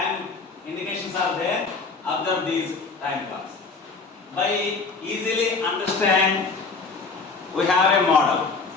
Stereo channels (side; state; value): right; quieter; 4.3 dB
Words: indications are there. Observe these time clocks. By easily understand, we have a model.